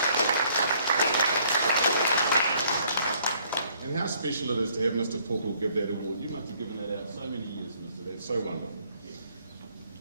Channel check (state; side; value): inverted; both; correlation -0.63